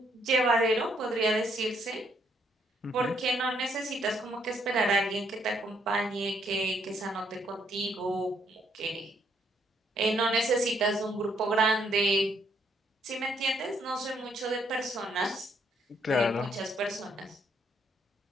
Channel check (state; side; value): normal; both; correlation 0.71